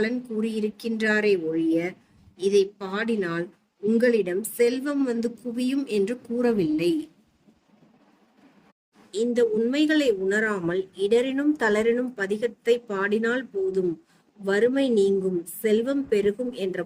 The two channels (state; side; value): identical; both; correlation 1.00